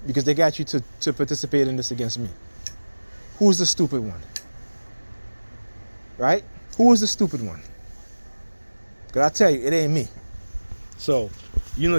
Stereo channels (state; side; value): inverted; both; correlation -1.00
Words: because they got you to participate in this against me. Who's the stupid one? Right? Who is the stupid one? Because I tell you, it ain't me. So, you know